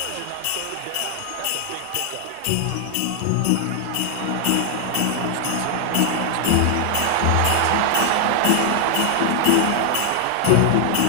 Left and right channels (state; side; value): different; both; correlation 0.00